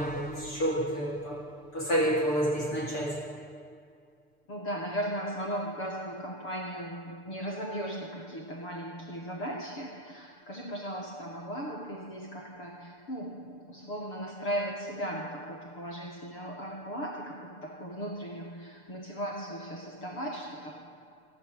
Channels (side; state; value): right; late; 6.8 ms